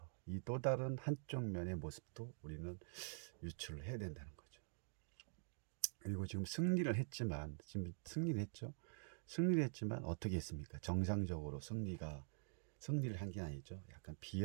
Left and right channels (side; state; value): left; silent; digital silence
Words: 이 또 다른 한쪽 면의 모습도 우리는 유출을 해야 된다는 거죠. 그리고 지금 승리를 했지만 승리를 했지만 어떻게 했습니까? 정상적으로 승리를 한 게 아니죠. 약간